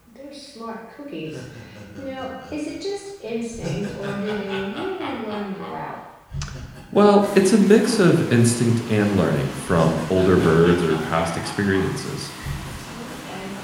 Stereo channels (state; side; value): identical; both; correlation 1.00